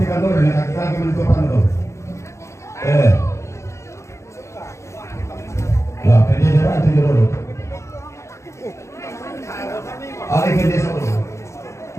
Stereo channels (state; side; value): late; right; 0.14 ms